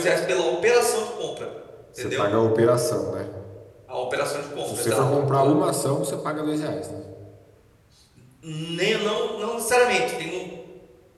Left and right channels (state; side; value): identical; both; correlation 1.00